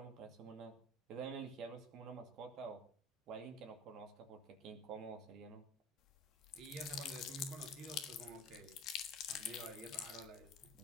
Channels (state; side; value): normal; both; correlation 0.40